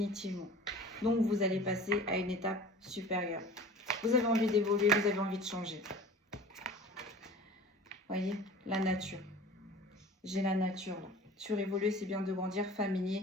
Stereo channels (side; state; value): both; normal; correlation 0.42